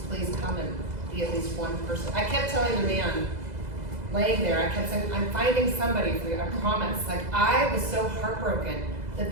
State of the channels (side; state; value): left; late; 2.0 ms